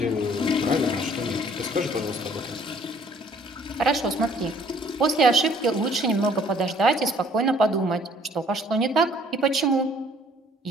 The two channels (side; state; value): both; normal; correlation 0.58